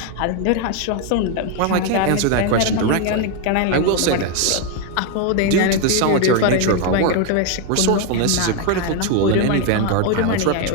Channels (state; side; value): different; both; correlation 0.01